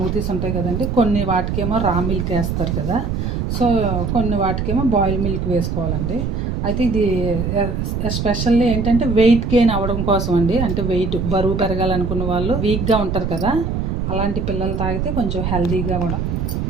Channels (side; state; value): right; noise; rumble, 1 dB below the sound